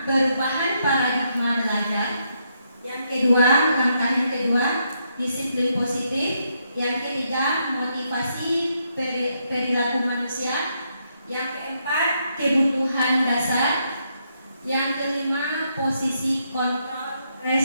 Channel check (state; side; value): inverted; both; correlation -0.77